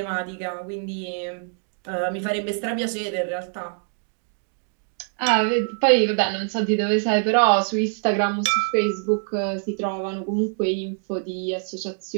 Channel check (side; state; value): left; silent; digital silence